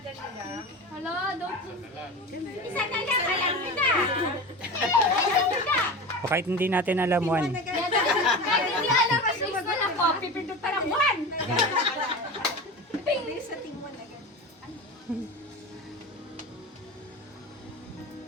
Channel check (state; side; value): normal; both; correlation 0.29